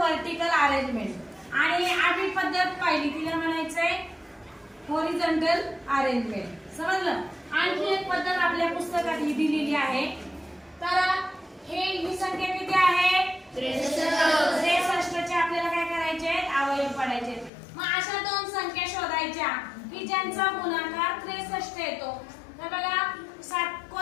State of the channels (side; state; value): right; drops out; at 17.5 s